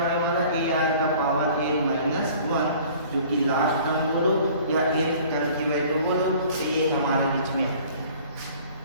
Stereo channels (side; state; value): both; inverted; correlation -0.50